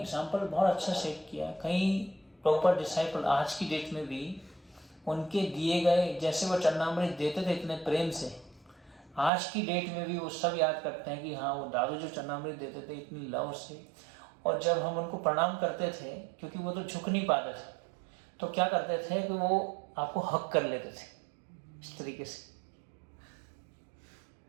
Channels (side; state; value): left; drops out; at 9.3 s